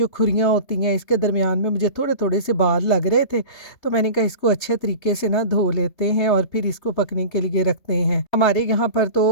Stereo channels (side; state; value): right; late; 3.2 ms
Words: खुरियाँ होती हैं इसके दरमियान में मुझे थोड़े थोड़े से बाल लग रहे थे, तो मैंने कहा इसको अच्छे तरीके से ना धो लेते हैं और फिर इसको पकने के लिए रखते हैं। हमारे यहाँ पर तो